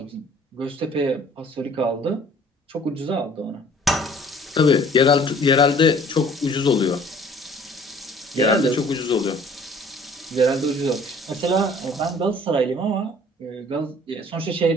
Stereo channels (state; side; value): normal; both; correlation 0.53